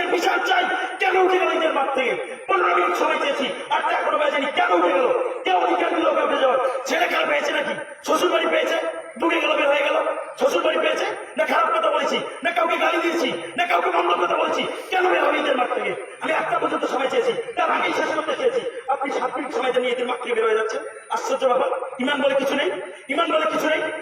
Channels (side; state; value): both; identical; correlation 1.00